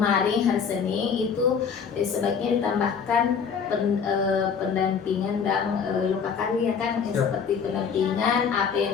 hari Senin itu sebaiknya ditambahkan pendampingan dan lokakarya kan, seperti pendampingan apa yang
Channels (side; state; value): right; quieter; 6.5 dB